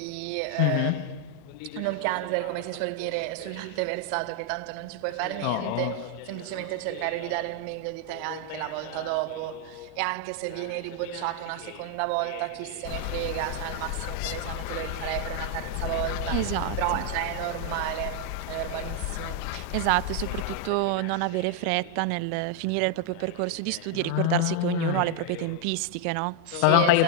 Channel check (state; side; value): different; both; correlation 0.00